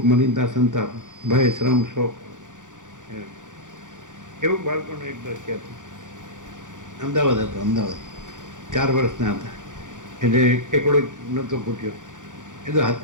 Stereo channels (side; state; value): left; late; 0.87 ms